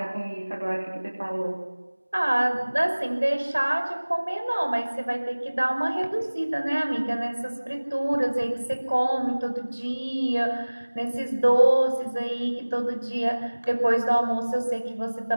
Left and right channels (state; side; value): inverted; both; correlation -1.00